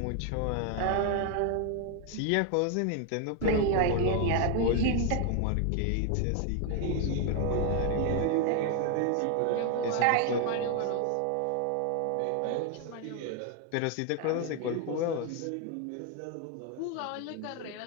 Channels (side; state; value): both; different; correlation 0.01